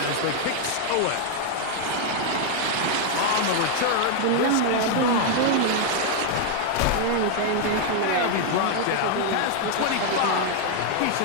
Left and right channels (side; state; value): both; different; correlation 0.00